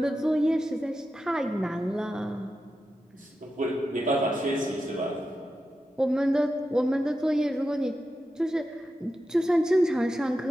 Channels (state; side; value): normal; both; correlation 0.90